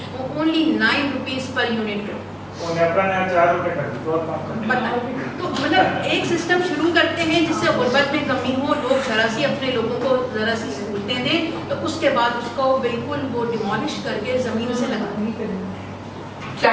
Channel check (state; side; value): identical; both; correlation 1.00